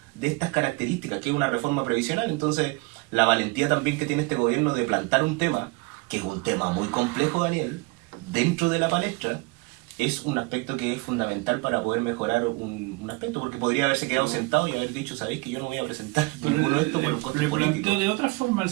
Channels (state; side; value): quieter; left; 25.9 dB